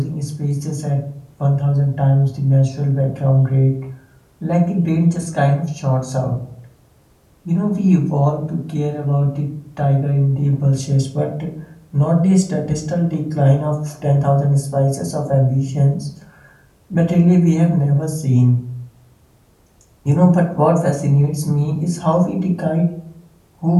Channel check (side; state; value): both; identical; correlation 1.00